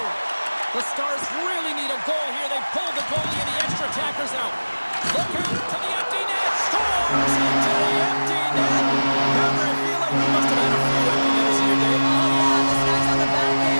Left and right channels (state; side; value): inverted; both; correlation -1.00